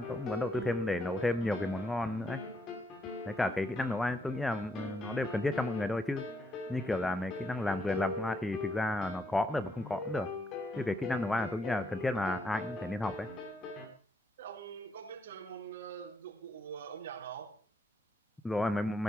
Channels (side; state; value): both; normal; correlation 0.76